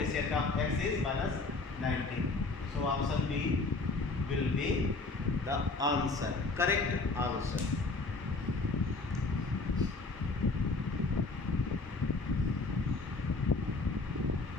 of x is minus 19. So option B will be the answer, correct answer.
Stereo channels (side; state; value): right; quieter; 3.6 dB